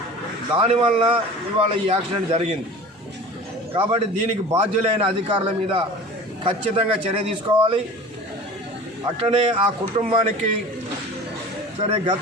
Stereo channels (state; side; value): normal; both; correlation 0.38